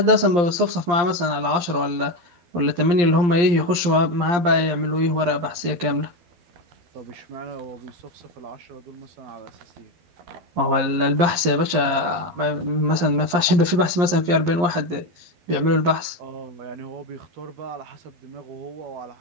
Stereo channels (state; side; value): late; left; 12 ms